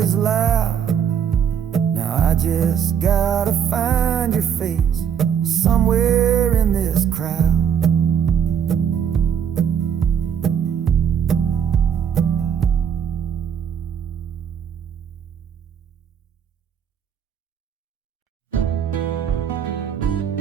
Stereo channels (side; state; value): left; quieter; 8.2 dB